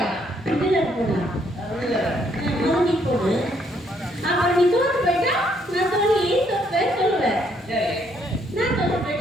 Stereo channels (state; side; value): normal; both; correlation 0.70